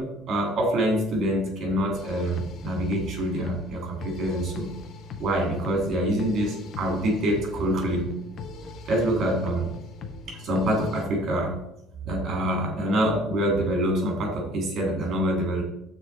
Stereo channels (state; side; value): normal; both; correlation 0.52